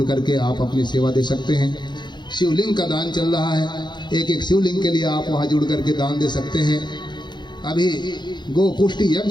करके आप अपनी सेवा दे सकते हैं। शिवलिंग का दान चल रहा है, एक एक शिवलिंग के लिए आप वहाँ जुड़ करके दान दे सकते हैं। अभी गो पुष्टि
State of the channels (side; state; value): right; late; 0.21 ms